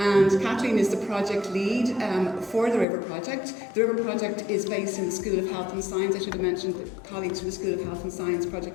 Kathleen is the project lead for the RiVeR project. The RiVeR project is based in the School of Health and Science. I should have mentioned that colleagues from the School of Health and Science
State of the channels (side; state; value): right; drops out; at 2.9 s